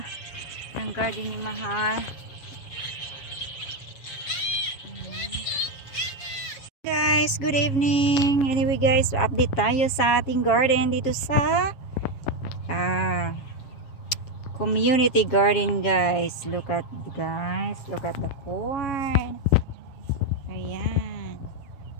ng garden ni Mahal. Guys, good evening. Anyway guys, update tayo sa ating garden dito sa community garden guys. Look at the corn. Ayan.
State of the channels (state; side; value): late; right; 7.2 ms